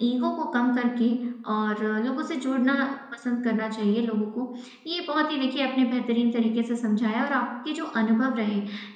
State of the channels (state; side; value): identical; both; correlation 1.00